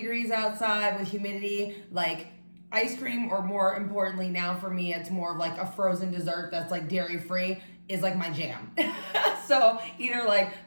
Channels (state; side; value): inverted; both; correlation -1.00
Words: outside with humidity, like ice cream, or more importantly now for me, it's more of like a frozen dessert that's like dairy free is like my jam. So either like